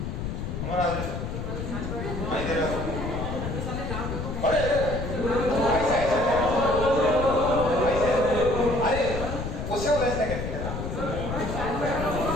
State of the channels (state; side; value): noise; left; rumble, 5 dB below the sound